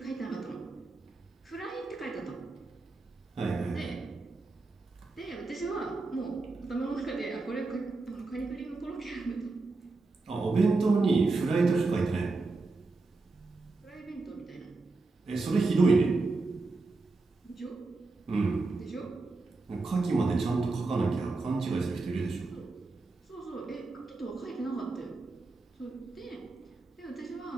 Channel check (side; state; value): left; quieter; 3.6 dB